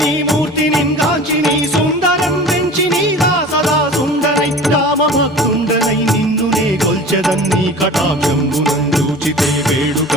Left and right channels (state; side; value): normal; both; correlation 0.39